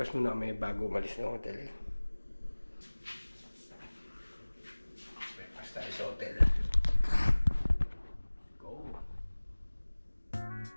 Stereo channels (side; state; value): both; inverted; correlation -1.00